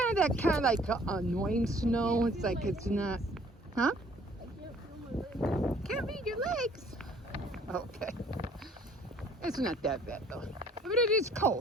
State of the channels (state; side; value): normal; both; correlation 0.58